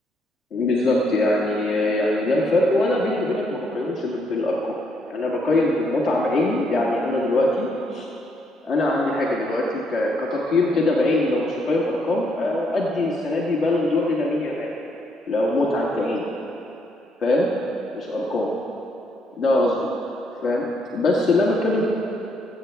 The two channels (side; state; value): both; normal; correlation 0.73